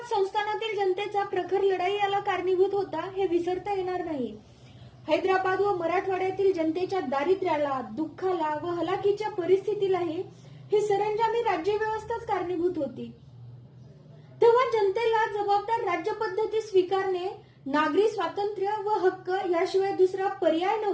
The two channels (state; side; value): identical; both; correlation 1.00